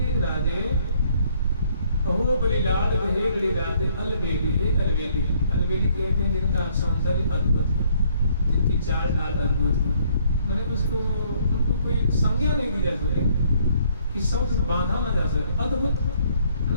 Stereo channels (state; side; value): inverted; both; correlation -0.65